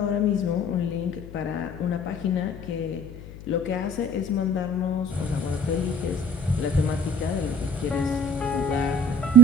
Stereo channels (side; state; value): left; noise; hum, 14 dB below the sound